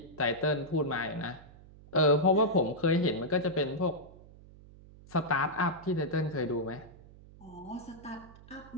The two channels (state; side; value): noise; right; hum, 21 dB below the sound